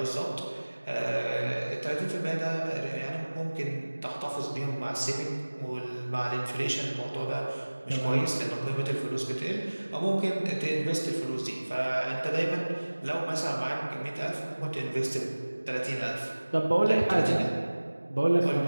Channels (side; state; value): both; inverted; correlation -1.00